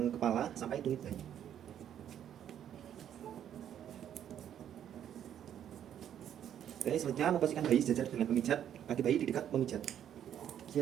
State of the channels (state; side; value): quieter; left; 10.0 dB